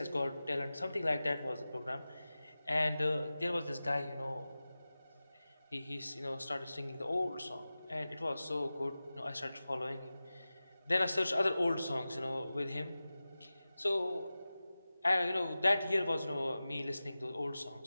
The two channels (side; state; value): both; inverted; correlation -0.96